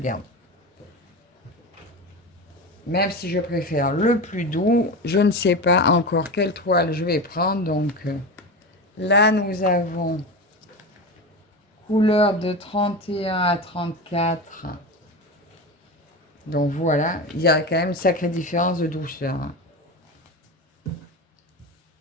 Même si je préfère le plus doux, je ne sais pas encore quelle toile je vais prendre. Donc là, nous avons couleur de 31 à 34. Donc voilà, il y a quand même une sacrée différence de douceur. Hein.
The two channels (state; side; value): normal; both; correlation 0.24